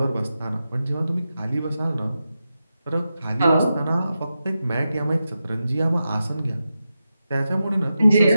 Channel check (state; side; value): inverted; both; correlation -0.90